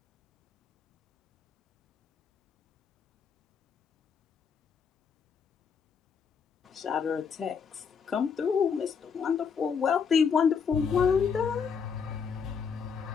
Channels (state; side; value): quieter; right; 6.3 dB